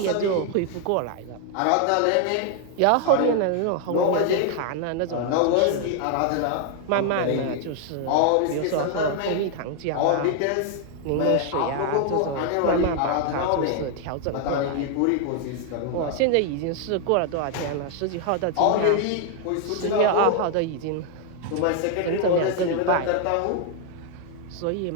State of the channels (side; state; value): both; different; correlation 0.00